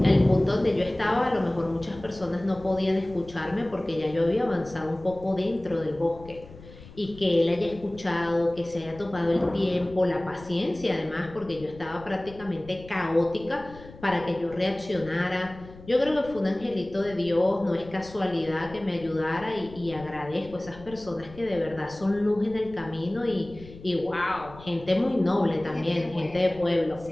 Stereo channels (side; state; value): left; noise; rumble, 18 dB below the sound